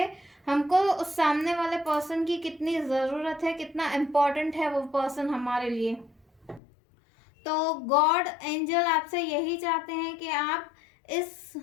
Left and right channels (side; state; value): right; drops out; at 6.6 s